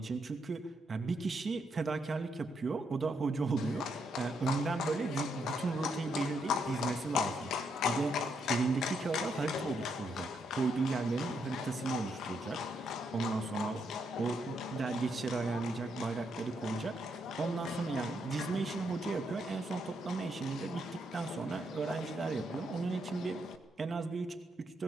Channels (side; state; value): both; normal; correlation 0.77